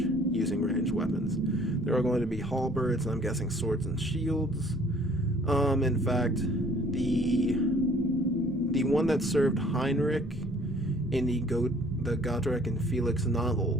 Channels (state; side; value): normal; both; correlation 0.56